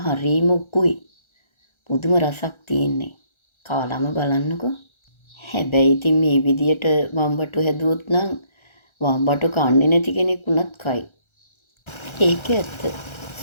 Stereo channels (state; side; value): late; right; 1.3 ms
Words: හරිම උකුයි. පුදුම රසක් තියෙන්නේ. කාලම බලන්නකෝ. හැබැයි ඉතින් මේ විදියට වම්බටු හැදුවොත් නම් වම්බටු කන්නේ නැති කෙනෙක් වුණත් කයි. ඒක ඇත්ත.